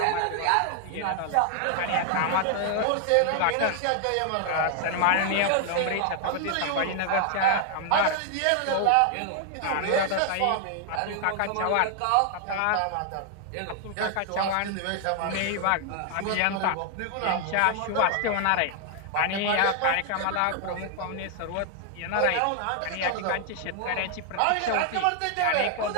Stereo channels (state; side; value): different; both; correlation 0.00